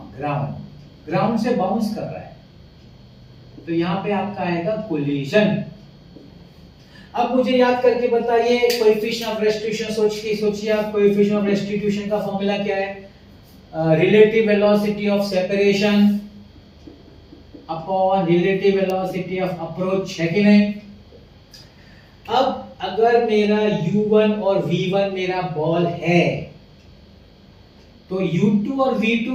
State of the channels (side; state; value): both; identical; correlation 1.00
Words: ground, ground से बाउंस कर रहा है, तो यहां पे आपका आएगा कोलिजन। अब मुझे याद करके बताइए कोएफिशिएंट ऑफ रेस्टिट्यूशन, सोचिए आप, कोएफिशिएंट ऑफ रेस्टिट्यूशन का फॉर्मूला क्या है? Relative velocity of separation upon relative velocity of approach, है कि नहीं? अब अगर मेरा u1 और v1 मेरा बॉल है, तो u2 और